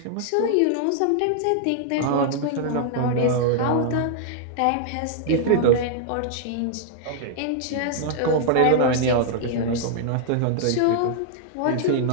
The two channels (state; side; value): different; both; correlation -0.01